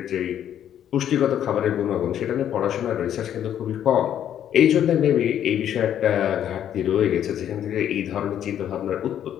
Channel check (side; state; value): right; quieter; 10.2 dB